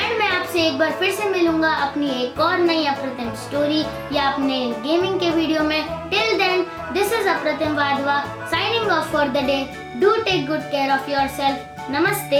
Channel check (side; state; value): both; identical; correlation 1.00